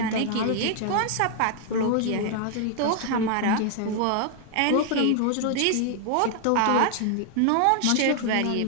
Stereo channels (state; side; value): different; both; correlation 0.00